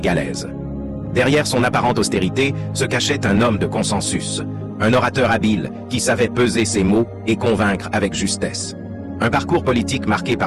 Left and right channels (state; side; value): identical; both; correlation 1.00